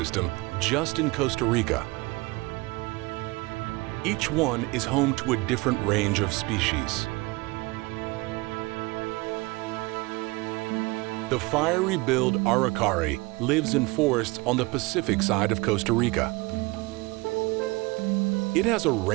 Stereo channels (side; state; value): left; quieter; 23.8 dB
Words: just in Costa Rica. Each one is home to a different range of species. The fiery-billed araucari lives in forests on the Pacific side of Costa Rica. It has a